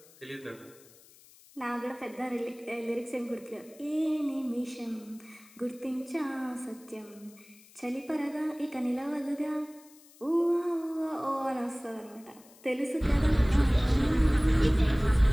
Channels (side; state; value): left; noise; hiss, 25 dB below the sound